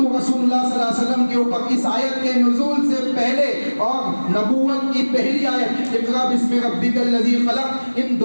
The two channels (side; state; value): both; inverted; correlation -1.00